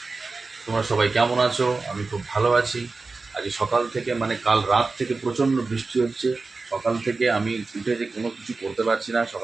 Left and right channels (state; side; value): quieter; left; 3.9 dB